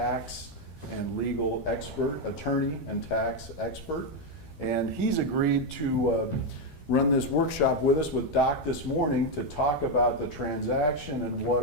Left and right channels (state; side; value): late; right; 13 ms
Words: and legal expert, attorney and tax expert, and he's agreed to run this workshop with us with Doc this morning to talk about the transaction and